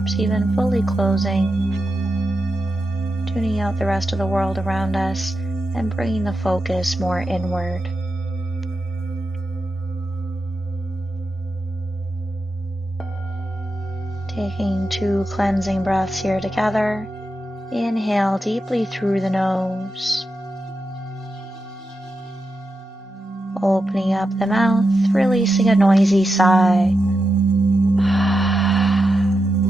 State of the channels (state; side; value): normal; both; correlation 0.88